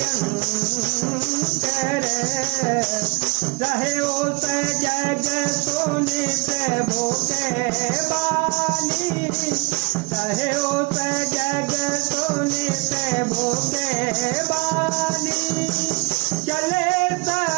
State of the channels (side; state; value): left; quieter; 25.7 dB